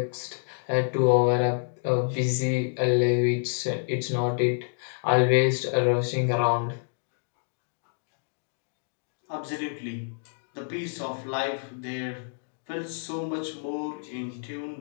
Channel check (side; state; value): right; silent; digital silence